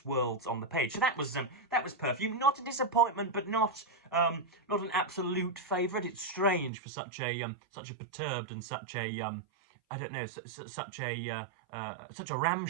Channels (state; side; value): drops out; left; at 6.7 s